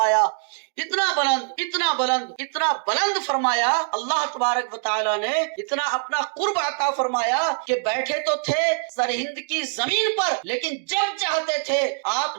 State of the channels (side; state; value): left; silent; digital silence